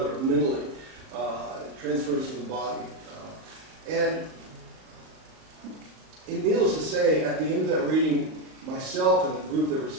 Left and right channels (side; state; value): left; late; 38 ms